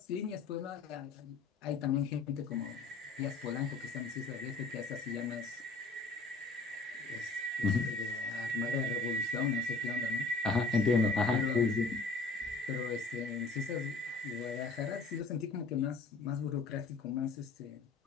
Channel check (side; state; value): right; quieter; 3.8 dB